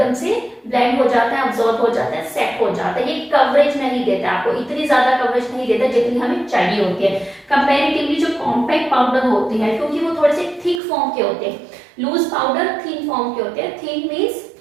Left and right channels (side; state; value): left; drops out; at 10.8 s